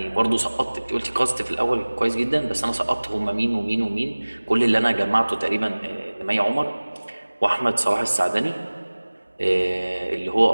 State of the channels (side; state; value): both; inverted; correlation -1.00